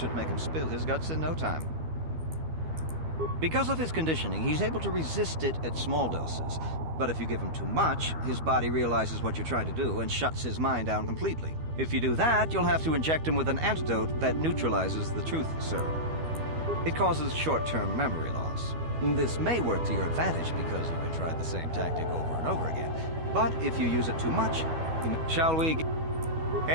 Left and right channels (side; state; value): left; late; 12 ms